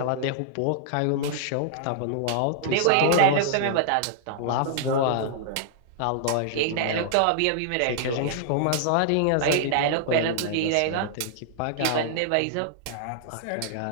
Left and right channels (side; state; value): both; different; correlation -0.01